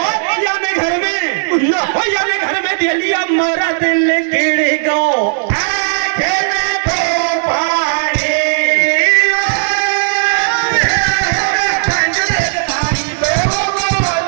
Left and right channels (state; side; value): silent; left; digital silence